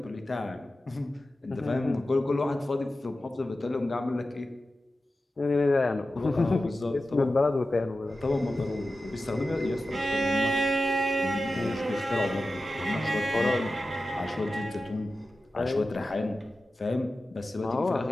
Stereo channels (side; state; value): both; normal; correlation 0.94